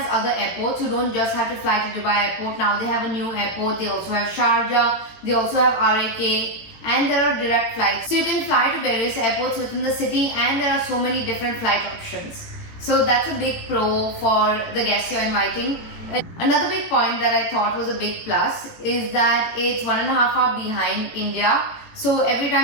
other airports. You don't just have to fly to Dubai airport. Now they have a new airport. They also have Sharjah. They also have RAK. And there are direct flights. So you can fly to various airports within the city and there are so many different flight options. So that's a big pro for the guests you're inviting. Another big point that I thought was a big plus is that it's 1.5 hours behind India. So every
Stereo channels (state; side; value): late; right; 18 ms